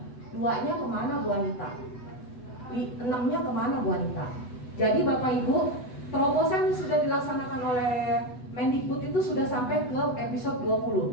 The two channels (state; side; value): late; right; 8.1 ms